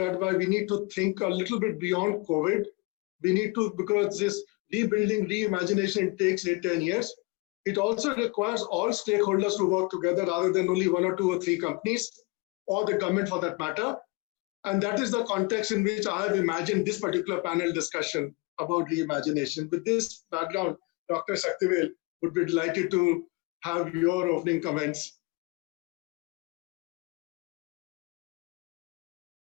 why we need to think a little bit beyond COVID. We need to, because this rebuilding, reimagination takes 8–10 years. It also requires all stakeholders to work together rather than only 1 or 2 or 3 companies, or the government for that matter. And that is the context in which I have imagined this particular panel discussion about reimagination. With this background, Dr. Saktivel would be delighted to have your opening comments.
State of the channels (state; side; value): quieter; right; 27.3 dB